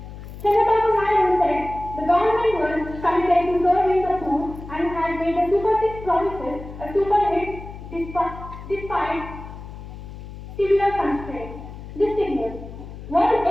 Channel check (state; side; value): noise; left; hum, 13 dB below the sound